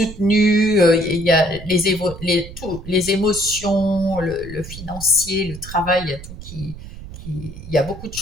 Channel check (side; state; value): right; noise; rumble, 13 dB below the sound